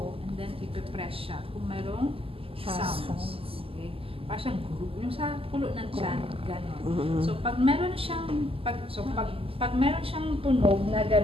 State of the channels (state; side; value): late; left; 0.27 ms